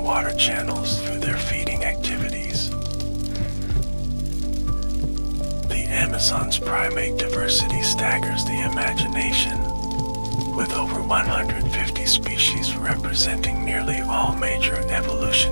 water channels through their feeding activities. The Amazon's primate diversity staggers the imagination, with over 150 species representing nearly all major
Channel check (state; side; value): inverted; both; correlation -1.00